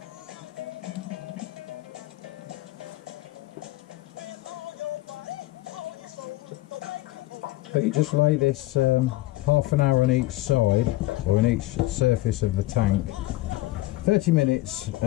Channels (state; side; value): quieter; right; 17.5 dB